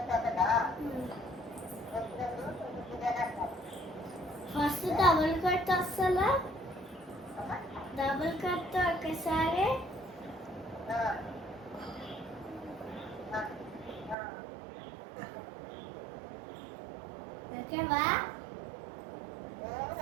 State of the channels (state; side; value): drops out; left; at 14.2 s